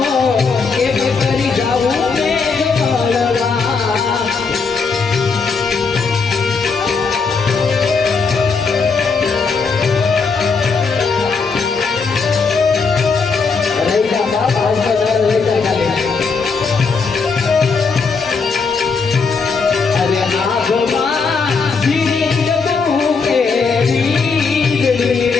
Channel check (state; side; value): quieter; right; 4.9 dB